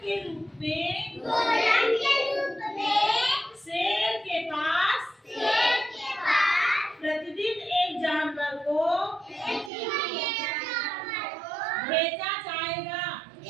के रूप में शेर के पास प्रतिदिन एक जानवर को भेजा जाएगा।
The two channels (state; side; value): drops out; left; at 9.7 s